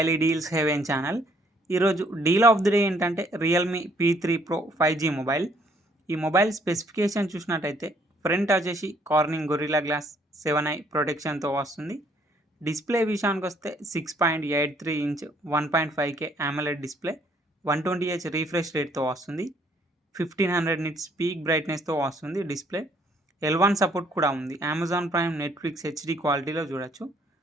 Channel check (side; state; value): both; normal; correlation 0.65